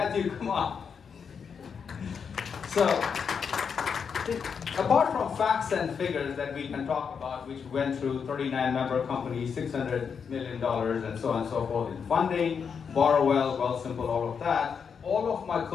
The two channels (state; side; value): quieter; right; 6.5 dB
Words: come on. So, apart from facts and figures that we can talk about, which went through 39 member companies, $600 million, and so on and so forth in funding, borrow well, simple, all of that, all of my